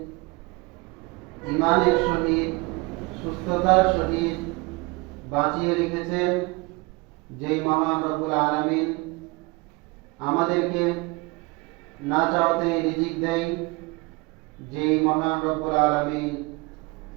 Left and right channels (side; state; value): left; quieter; 26.1 dB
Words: ঈমানের সহিত, সুস্থতার সহিত বাঁচিয়ে রেখেছেন। যেই মহান রব্বুল আলামিন আমাদেরকে না চাওতে রিজিক দেয়, যেই মহান রব্বুল আলামিন